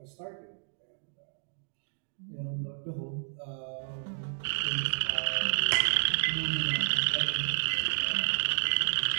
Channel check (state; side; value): silent; left; digital silence